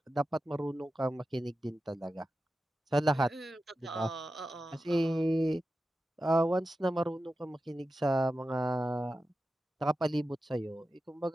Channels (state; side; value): normal; both; correlation 0.93